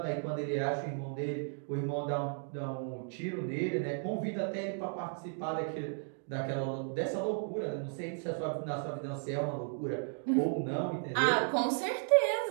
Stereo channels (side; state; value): left; silent; 55 dB below the other